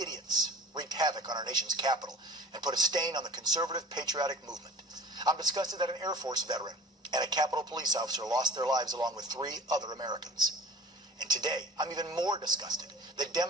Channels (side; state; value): both; normal; correlation 0.42